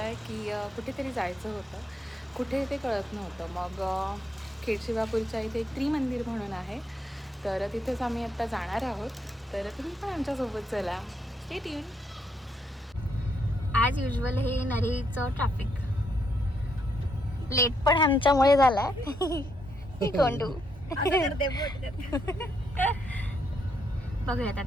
आहे की कुठेतरी जायचं होतं. कुठे ते कळत नव्हतं. मग खेडशिवापूरच्या इथे एक त्रिमंदिर म्हणून आहे, तर तिथेच आम्ही आत्ता जाणार आहोत. तर तुम्ही पण आमच्यासोबत चला. Stay tune. ॲज युजल हे नरीचं ट्रॅफिक लेट पण आमच्यामुळे झालाय. कोंडू बघूयात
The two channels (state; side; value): normal; both; correlation 0.76